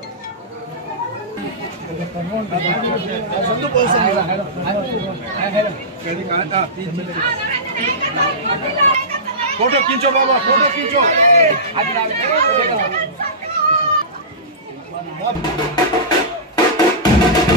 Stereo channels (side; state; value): both; normal; correlation -0.19